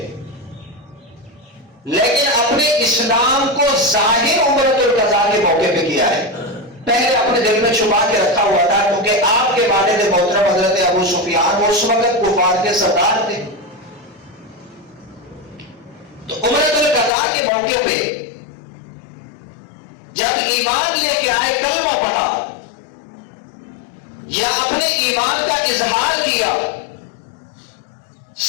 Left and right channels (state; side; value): drops out; right; at 17.1 s